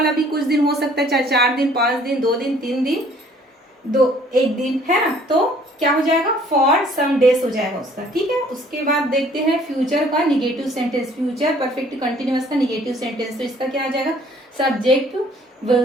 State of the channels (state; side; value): normal; both; correlation 0.57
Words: भी कुछ दिन हो सकता है, चाहे 4 दिन, 5 दिन, 2 दिन, 3 दिन, 1 दिन, है ना। तो क्या हो जाएगा, फॉर सम डेज हो जाएगा उसका, ठीक है। उसके बाद देखते हैं फ्यूचर का negative sentence, future perfect continuous का निगेटिव सेंटेंस। तो इसका क्या आ जाएगा, subject